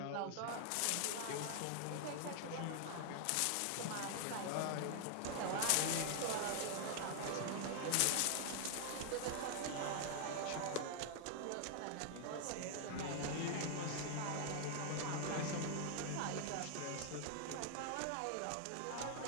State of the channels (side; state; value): both; different; correlation 0.00